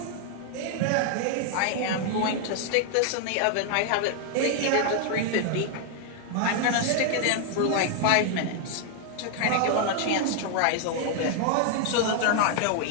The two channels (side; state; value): both; different; correlation 0.00